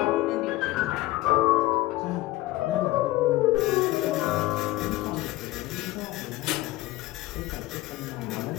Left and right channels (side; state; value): right; quieter; 18.0 dB